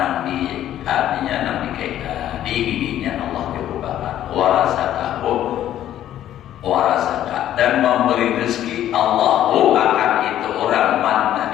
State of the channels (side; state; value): right; quieter; 11.9 dB